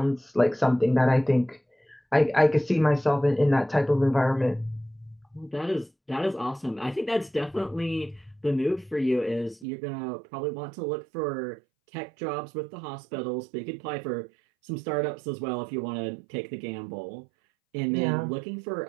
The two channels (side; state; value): left; drops out; at 9.7 s